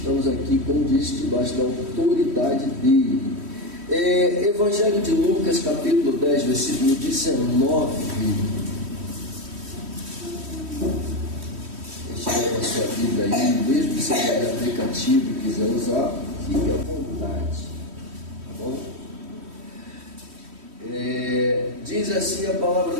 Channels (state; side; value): late; left; 3.1 ms